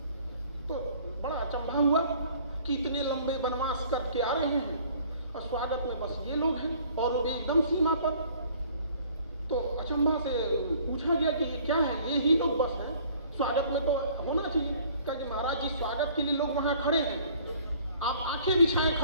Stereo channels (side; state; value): both; inverted; correlation -0.55